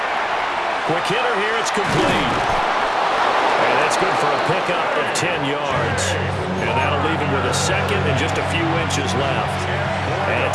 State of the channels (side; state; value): both; identical; correlation 1.00